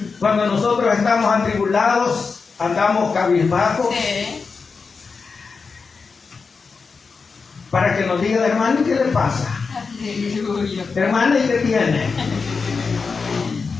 Cuando nosotros estamos atribulados, andamos cabizbajos. Sí. Para que nos digan: hermano, ¿qué le pasa? Aleluya. Hermano, ¿y qué tiene?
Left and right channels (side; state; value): right; quieter; 4.9 dB